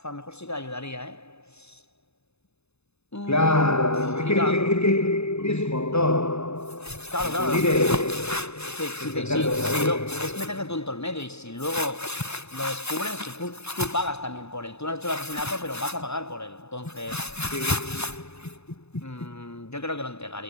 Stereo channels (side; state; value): right; late; 0.80 ms